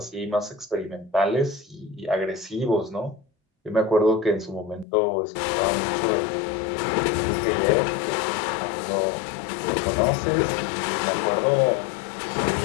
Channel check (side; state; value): right; drops out; at 4.9 s